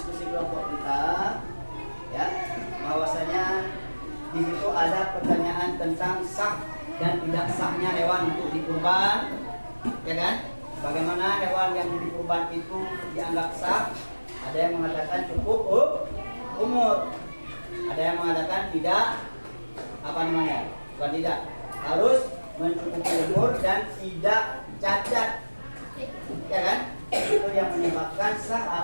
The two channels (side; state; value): both; inverted; correlation -1.00